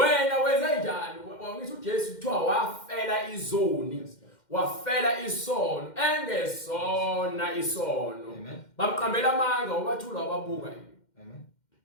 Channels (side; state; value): right; late; 2.1 ms